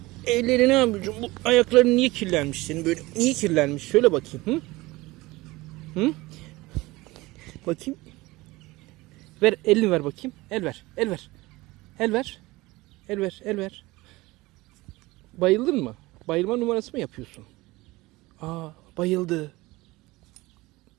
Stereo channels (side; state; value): left; quieter; 20.6 dB